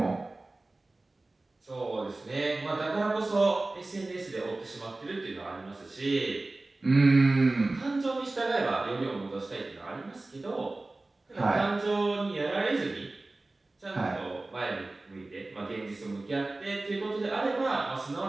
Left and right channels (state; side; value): quieter; left; 3.0 dB